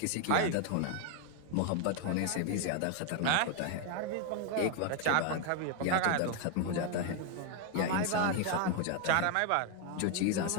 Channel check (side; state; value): both; different; correlation 0.01